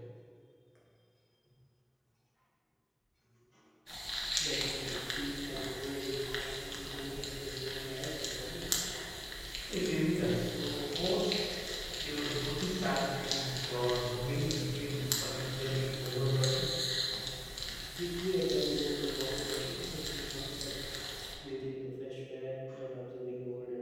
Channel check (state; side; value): identical; both; correlation 1.00